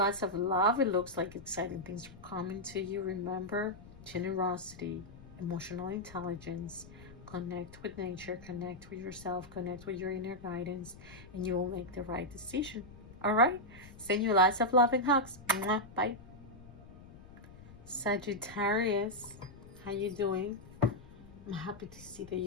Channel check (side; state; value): left; noise; rumble, 18 dB below the sound